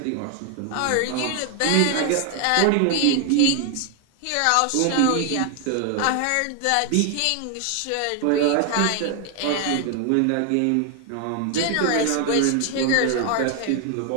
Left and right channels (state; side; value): different; both; correlation 0.01